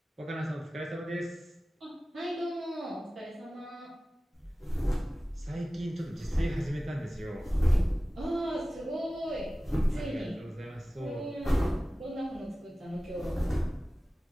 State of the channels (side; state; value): both; normal; correlation 0.96